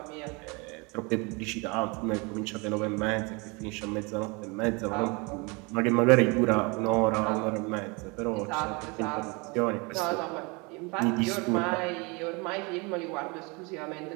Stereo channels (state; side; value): quieter; left; 28.6 dB